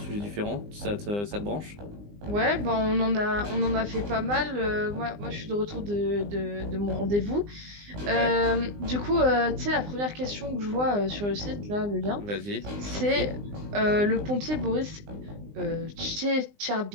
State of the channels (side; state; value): left; late; 20 ms